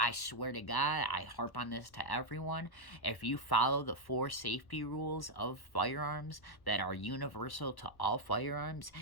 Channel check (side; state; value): right; late; 1.1 ms